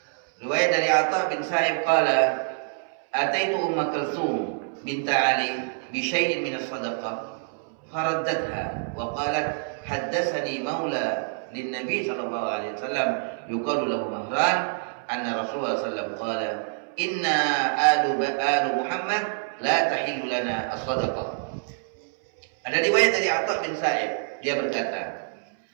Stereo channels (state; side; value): silent; left; 61 dB below the other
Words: Riwayat dari Atha bin Sa'ib qala ataitu Umma Kulthum bint Ali بشيء من الصدقة فردتها وقالت حدثني مولى للنبي صلى الله عليه وسلم يقال له مهران أن رسول الله صلى الله عليه وسلم قال إنا آل محمد لا تحل لنا الصدقة. Ada riwayat dari Atha bin Sa'ib, dia berkata,